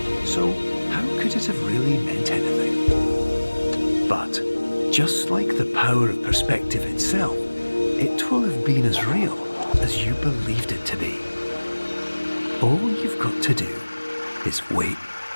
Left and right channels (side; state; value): both; inverted; correlation -1.00